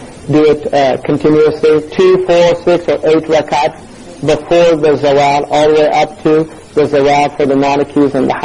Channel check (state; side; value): identical; both; correlation 1.00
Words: do it continuously, 2, 4, 6, or 8 rakats before the zawal, all the way up to the zawal for the Malikis and the